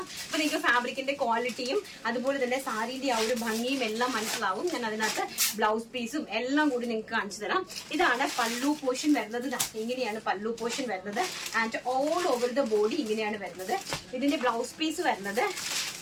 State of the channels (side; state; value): both; identical; correlation 1.00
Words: അപ്പൊ നിങ്ങൾക്ക് ഫാബ്രിക്കിന്റെ ക്വാളിറ്റിയും അതുപോലെ തന്നെ സാരിന്റെ ആ ഒരു ഭംഗിയും എല്ലാം മനസ്സിലാവും. ഞാൻ അതിനകത്ത് ബ്ലൗസ് പീസും എല്ലാം കൂടി നിങ്ങൾക്ക് കാണിച്ചു തരാം. ഇതാണ് പല്ലു പോർഷൻ വരുന്നത്. ഇങ്ങനെയാണ് പല്ലു പോർഷൻ വരുന്നത്. And all over the body ഇങ്ങനെയാണ് വരുന്നത്. ഇതിന്റെ ബ്ലൗസ് പീസ് വരുന്നത്